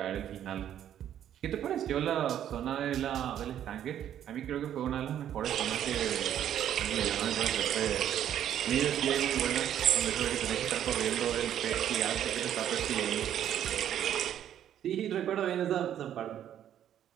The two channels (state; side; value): quieter; left; 10.5 dB